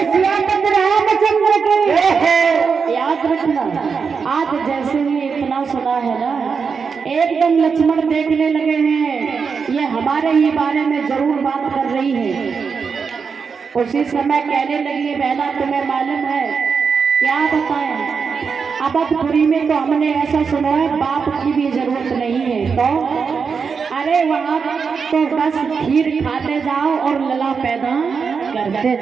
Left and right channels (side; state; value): left; quieter; 5.7 dB